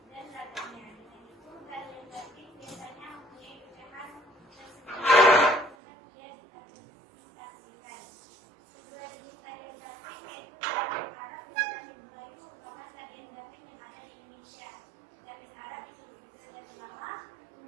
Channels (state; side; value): drops out; left; at 5.8 s